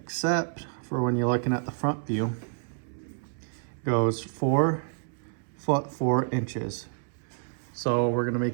for when you're looking at the front view, it goes 4 foot 4 inches. So we're gonna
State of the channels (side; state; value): left; silent; 59 dB below the other